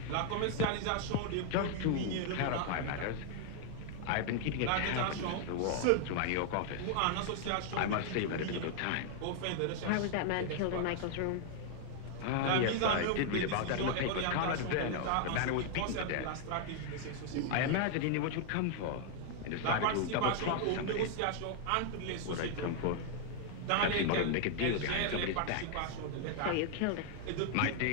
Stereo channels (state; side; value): different; both; correlation 0.00